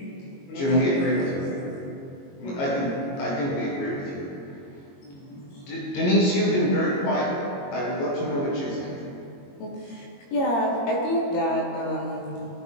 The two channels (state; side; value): late; right; 22 ms